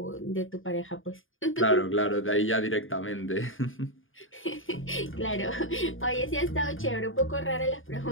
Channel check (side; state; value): right; late; 0.58 ms